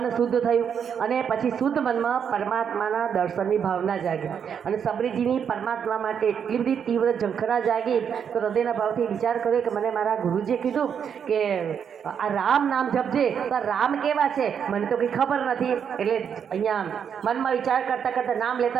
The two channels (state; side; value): quieter; left; 7.6 dB